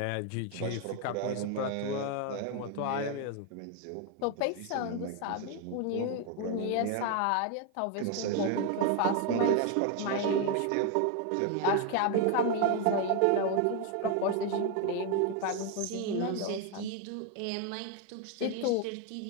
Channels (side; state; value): both; different; correlation 0.01